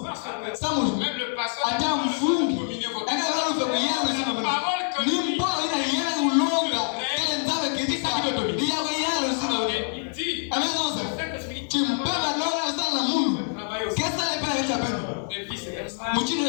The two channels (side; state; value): right; silent; 56 dB below the other